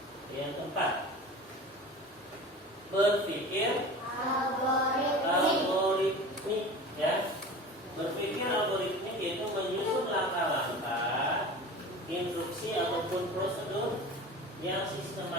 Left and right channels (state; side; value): normal; both; correlation 0.36